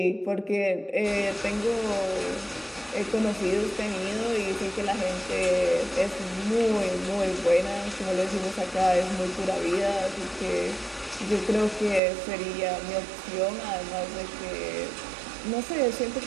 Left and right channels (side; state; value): left; drops out; at 12.0 s